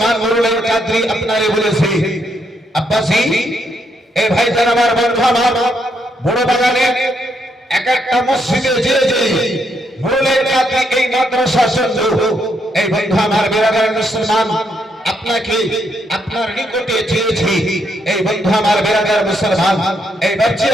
মুরুলের কাদরি আপনারে বলেছি, আব্বাসি এই ভাইজান আমার বন্ধু আমার বড় বাগানে এক একটা মসজিদে যে মুরুলের কাদরি এই মাদ্রাসা সঞ্জু এই বন্ধু আমার বিরাদর মুসলমান আপনাকে আপনার নিকটে চেয়েছি। এই বন্ধু আমার বিরাদর মুসলমান, এই বাচ্চা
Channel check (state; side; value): normal; both; correlation 0.76